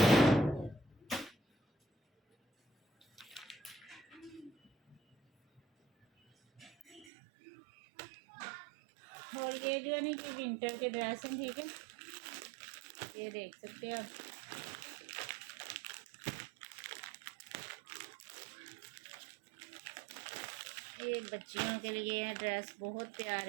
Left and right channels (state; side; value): drops out; left; at 7.1 s